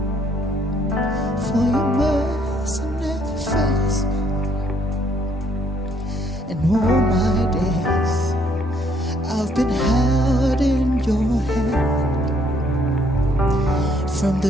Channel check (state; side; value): normal; both; correlation 0.68